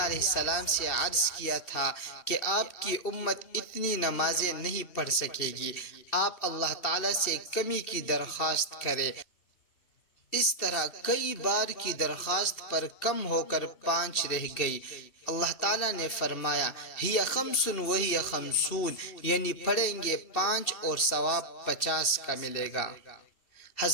السلام سے عرض کیا تھا کہ آپ کی امت اتنی نمازیں نہیں پڑھ سکے گی، آپ اللہ تعالیٰ سے کمی کی درخواست کریں۔ اس طرح کئی بار کی درخواست پر کم ہو کر 5 رہ گئی۔ اللہ تعالیٰ نے فرمایا ہی خمس وہی خمسون، یعنی پڑھیں گے 5 اور ثواب 50 کا ملے گا۔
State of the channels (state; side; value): late; right; 2.7 ms